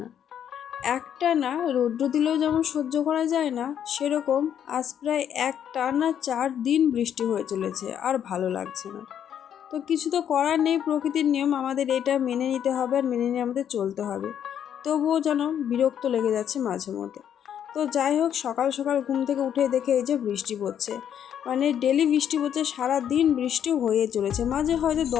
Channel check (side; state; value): right; quieter; 9.3 dB